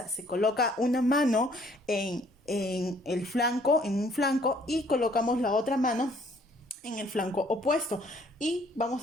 Se coloca una mano en el flanco, en un flanco, y colocamos la otra mano en el flanco opuesto y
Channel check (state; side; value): normal; both; correlation 0.61